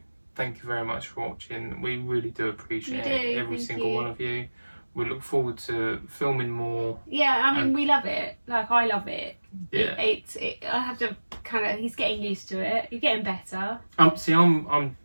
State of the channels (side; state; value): both; inverted; correlation -1.00